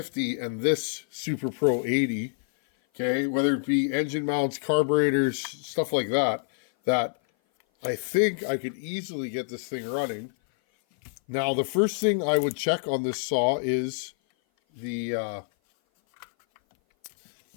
and this Super Pro 80. Okay, whether it be engine mounts, carburetors, stuff like that, that I think I could easily get this thing running. Now, the first thing I would check on this saw is the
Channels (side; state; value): right; silent; 57 dB below the other